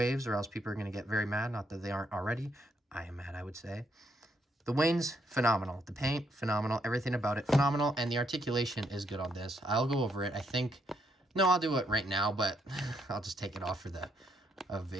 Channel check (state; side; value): normal; both; correlation 0.75